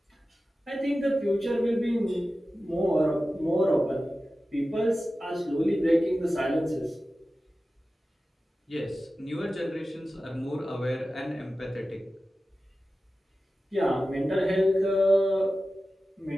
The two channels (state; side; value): normal; both; correlation 0.94